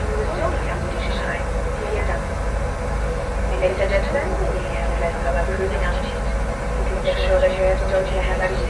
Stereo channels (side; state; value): both; identical; correlation 1.00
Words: Ladies and gentlemen, we have a lesson of cruising altitude. Make sure that your don't you have that